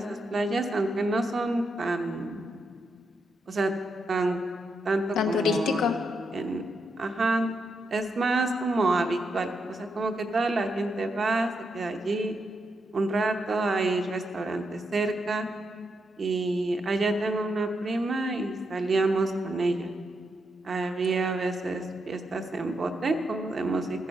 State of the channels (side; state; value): both; normal; correlation 0.82